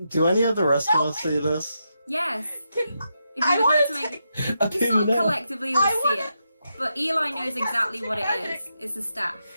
Do any of the rest of us see this? Yes. If I you would like to wanna make, Okay, you sort of no. collectively will I see wanna- it. But Eli knows exactly what it is. It's a staff.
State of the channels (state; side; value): inverted; both; correlation -0.84